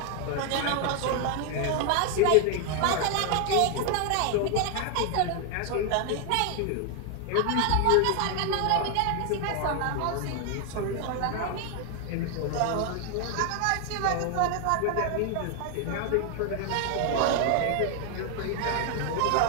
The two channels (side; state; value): both; different; correlation 0.00